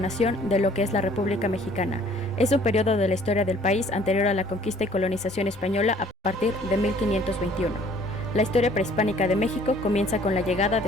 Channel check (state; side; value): normal; both; correlation 0.56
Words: de lo que es la República Mexicana. Es un periodo de la historia del país anterior a la conquista y colonización española a partir de 1521. La historia prehispánica de México comienza con la llegada